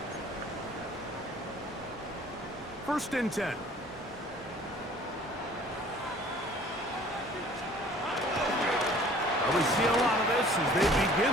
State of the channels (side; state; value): left; noise; hum, 24 dB below the sound